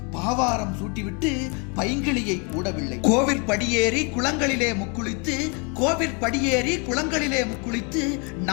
பாவாரம் சூட்டிவிட்டு பைங்கிளியை கூடவில்லை. கோவில் படியேறி குளங்களிலே முக்குளித்து, கோவில் படியேறி குளங்களிலே முக்குளித்து,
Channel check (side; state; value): right; quieter; 33.9 dB